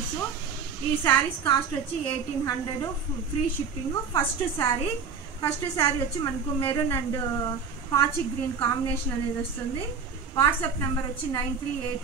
ఈ శారీస్ కాస్ట్ వచ్చి 1800 ఫ్రీ షిప్పింగ్. ఫస్ట్ శారీ వచ్చి మనకు మెరూన్ అండ్ పాచి గ్రీన్ కాంబినేషన్ అనేది వస్తుంది. వాట్సాప్ నెంబర్ వచ్చి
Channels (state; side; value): quieter; left; 5.8 dB